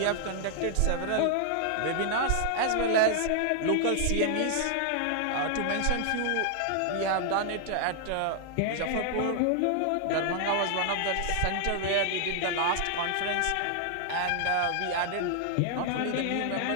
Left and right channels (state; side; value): different; both; correlation 0.00